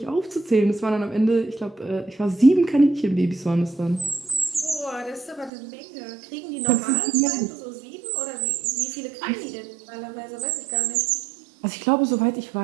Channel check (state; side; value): drops out; left; at 5.5 s